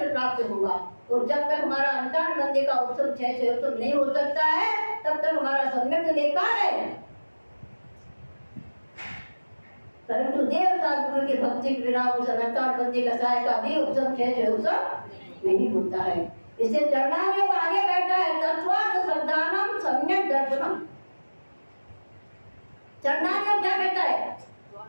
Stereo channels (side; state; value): both; inverted; correlation -1.00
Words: प्राप्त होगा। और जब तक हमारा अंतर्बंदी का उपशम 6 उपशम नहीं हो सकता है तब तक हमारा सम्यक बेकार है। परंतु देवता गुरु की भक्ति के बिना उस अंतर्बंदी कसाय का भी उपशम 6 उपशम नहीं होता है। इसे चरणान योग आगे कहता है तत्वार्थ श्रद्धानम सम्यक दर्शनम। चरणान योग क्या कहता है?